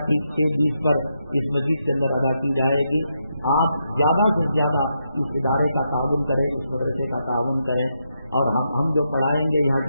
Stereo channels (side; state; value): both; inverted; correlation -0.82